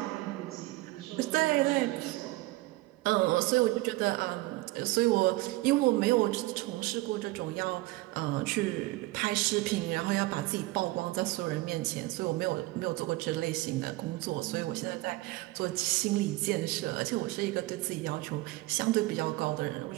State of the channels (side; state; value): left; quieter; 19.8 dB